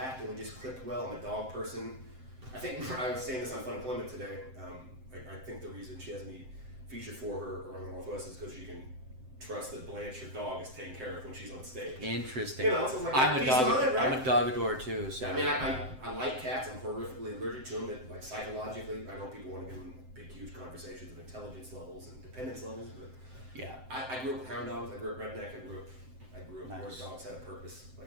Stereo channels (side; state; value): left; late; 7.7 ms